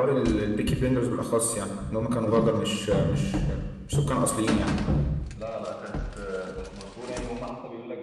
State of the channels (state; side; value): identical; both; correlation 1.00